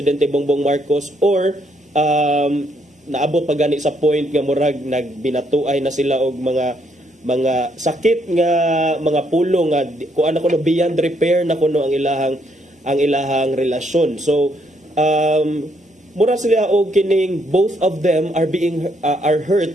Bongbong Marcos, or naabot pa gani sa point nga murag nagbinatuay na sila og mga sakit nga mga pulong nga kuan ako no beyond repair na kuno ang ilahang relasyon. So mura sila og kining both of them are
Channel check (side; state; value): both; normal; correlation 0.72